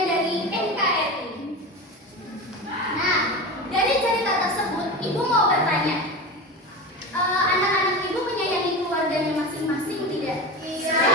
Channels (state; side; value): normal; both; correlation 0.26